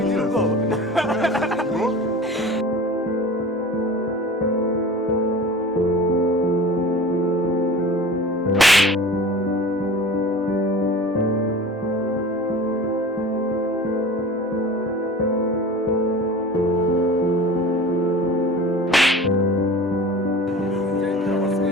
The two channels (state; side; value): normal; both; correlation 0.38